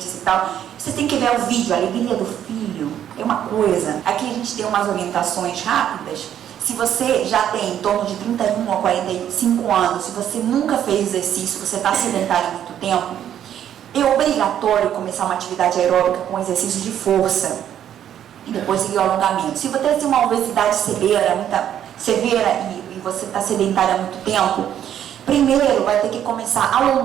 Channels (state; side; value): quieter; left; 10.2 dB